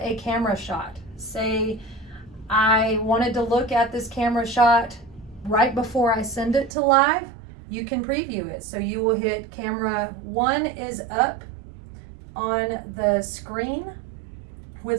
camera shot, say I wanted to look at this camera shot right before I send it to live, you can preview it. So you will hit camera 1 is up on the screen with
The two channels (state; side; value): drops out; left; at 6.7 s